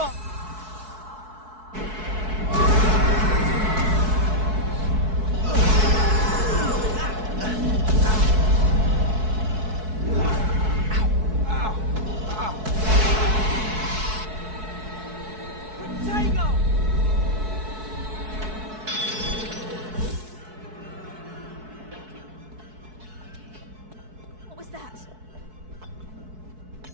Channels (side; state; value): left; late; 4.6 ms